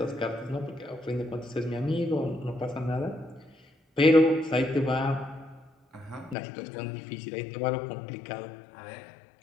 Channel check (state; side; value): drops out; right; at 6.4 s